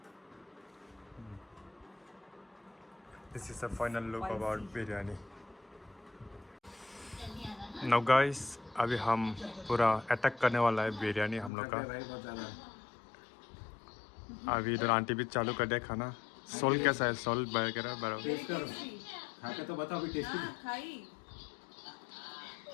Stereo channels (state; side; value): drops out; right; at 11.5 s